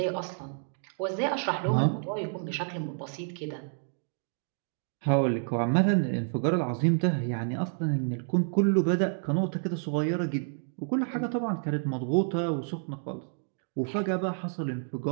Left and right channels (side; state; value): left; silent; 58 dB below the other